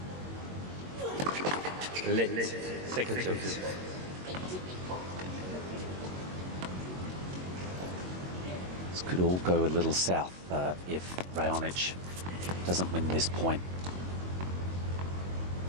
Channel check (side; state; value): left; late; 22 ms